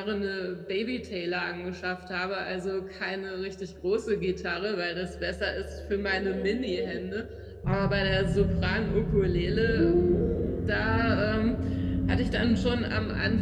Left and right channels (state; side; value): identical; both; correlation 1.00